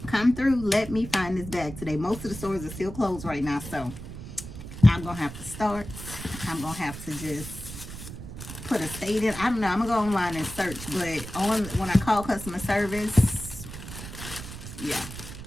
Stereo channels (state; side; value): noise; right; rumble, 11 dB below the sound